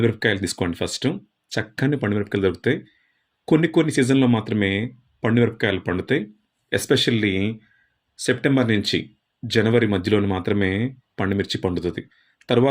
తీసుకోండి ఫస్టు. చక్కని పండుమిరపకాయలు దొరుకుతాయి. కొన్ని కొన్ని సీజన్‌లో మాత్రమే పండుమిరపకాయలు పండుతాయి. ఎస్పెషల్లీ సెప్టెంబర్ నుంచి జనవరి మధ్యలోనే మాత్రమే పండుమిర్చి పండుతది.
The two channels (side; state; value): both; identical; correlation 1.00